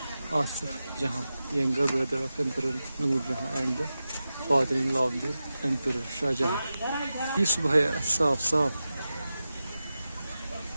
Asif Jahan, younger brother of Emperor Noor Jahan and the father-in-law of the Emperor Shah Jahan. ये सुबह है साफ साफ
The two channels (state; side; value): inverted; both; correlation -0.93